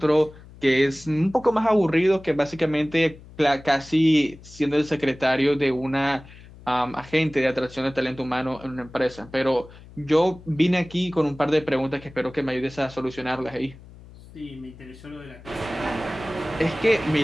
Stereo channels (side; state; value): left; noise; hum, 20 dB below the sound